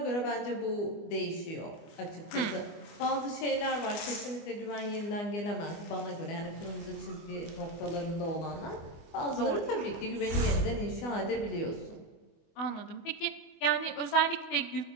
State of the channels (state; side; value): late; right; 24 ms